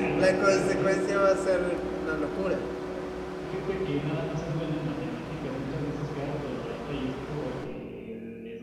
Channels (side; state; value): both; identical; correlation 1.00